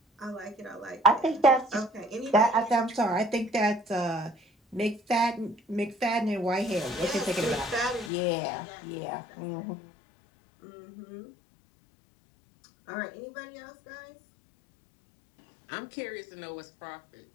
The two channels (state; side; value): drops out; right; at 8.1 s